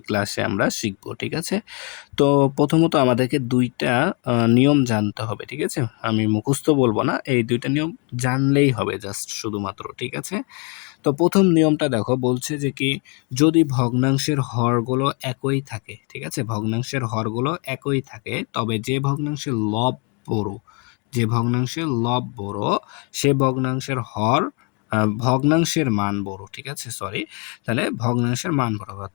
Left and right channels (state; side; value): quieter; right; 34.7 dB